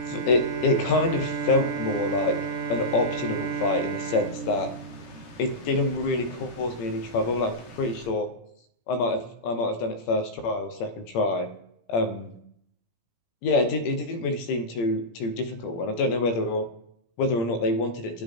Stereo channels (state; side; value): late; right; 17 ms